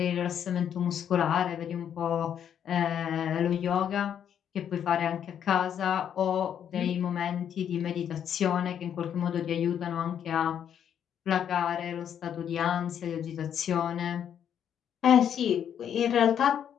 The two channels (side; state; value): right; quieter; 9.0 dB